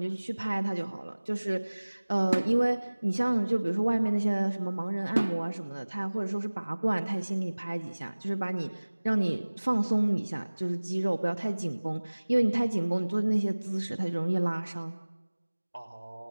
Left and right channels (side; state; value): both; inverted; correlation -1.00